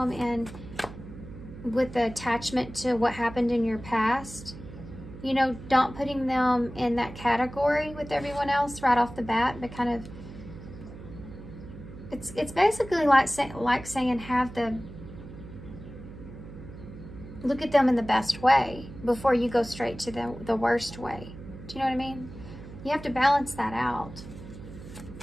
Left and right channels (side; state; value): right; noise; hum, 14 dB below the sound